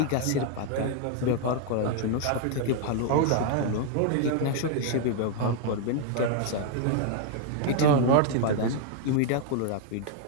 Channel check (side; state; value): both; different; correlation 0.00